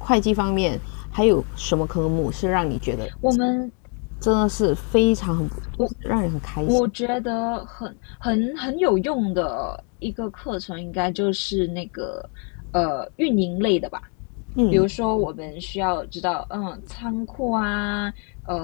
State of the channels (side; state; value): right; quieter; 39.8 dB